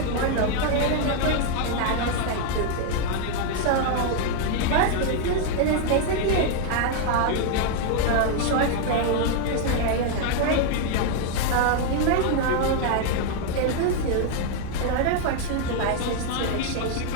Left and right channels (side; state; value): both; different; correlation 0.00